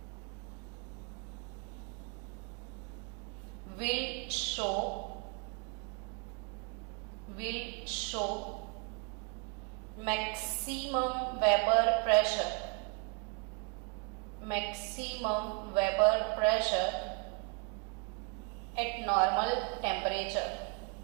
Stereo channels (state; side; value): quieter; left; 33.2 dB